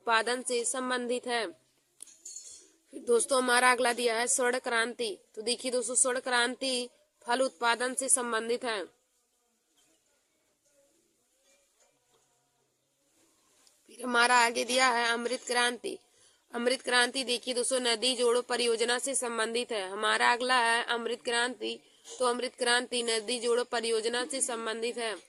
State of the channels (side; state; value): both; identical; correlation 1.00